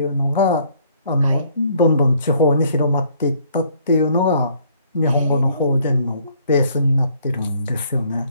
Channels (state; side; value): inverted; both; correlation -0.63